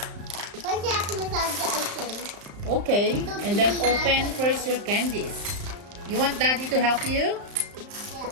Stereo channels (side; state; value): left; late; 35 ms